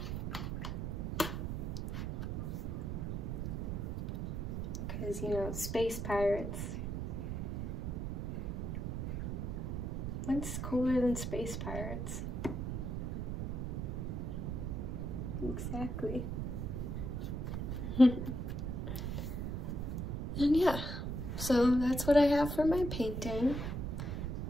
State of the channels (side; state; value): right; noise; rumble, 3 dB below the sound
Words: Because, you know, space pirates. What's cooler than space pirates? Exactly. And yeah, so that's what I have for my painting.